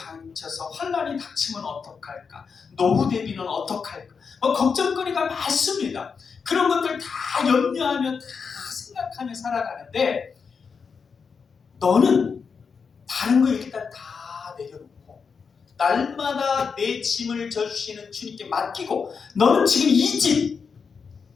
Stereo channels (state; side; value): quieter; right; 5.7 dB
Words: 환난이 닥치면 어떡할까, 노후 대비는 어떡할까, 걱정거리가 많습니다. 그런 것들 다 염려하며 다 생각하며 살아가는데, 너는 다른 거 일단 다 내려놓고 날마다 내 짐을 져주시는 주님께 맡기고, 너는 지금 이 짐,